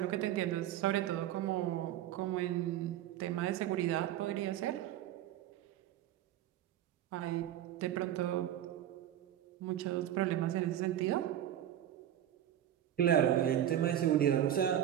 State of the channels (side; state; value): left; quieter; 11.5 dB